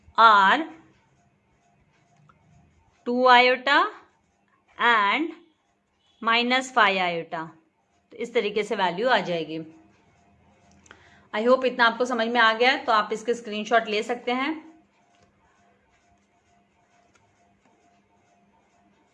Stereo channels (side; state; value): both; identical; correlation 1.00